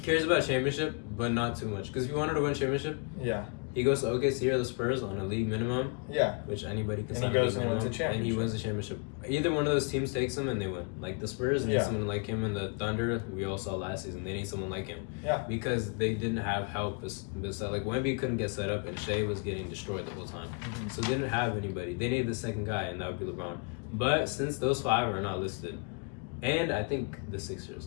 about championship, but not too much. Because if he wanted to win championship, Yeah, he goes to OKC or the Spurs on a league minimum, yeah. which anybody can And sign he a goes league and wins minimum, a championship. and he wins the championship. Either one of those teams takes him and they win. Like the Spurs need Yeah. someone like him, and the Thunder, we all saw last season, they need someone like him. Yeah. Because they didn't have help. Like Wemby couldn't get set up, and Shea was getting destroyed the whole time. Mhm. So they didn't have anybody. They needed the second guy, and that would be LeBron. But since those five are not listed, and I think the Sixers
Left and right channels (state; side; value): quieter; right; 34.6 dB